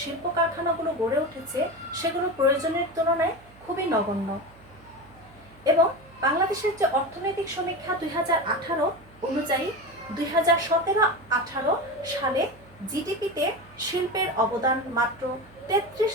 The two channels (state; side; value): noise; right; hum, 25 dB below the sound